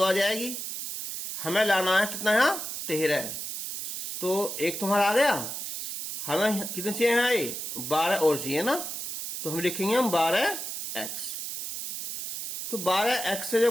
आ जाएगी। हमें लाना है कितना, यहाँ 13, तो 1 तुम्हारा आ गया, हमें कितने चाहिए यहाँ, ये 12 और चाहिए ना, तो हम लिखेंगे हम 12x। तो 12x से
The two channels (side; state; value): right; noise; hiss, 5 dB below the sound